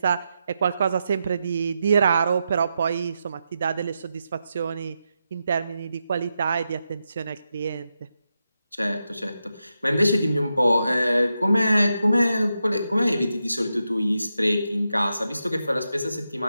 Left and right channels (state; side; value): inverted; both; correlation -0.87